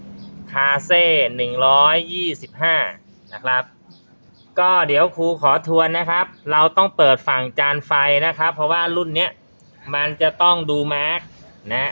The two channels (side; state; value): both; inverted; correlation -1.00